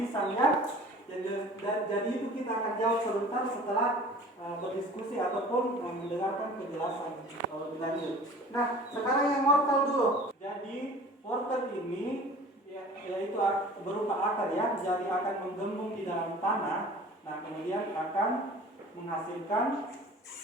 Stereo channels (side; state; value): both; normal; correlation 0.44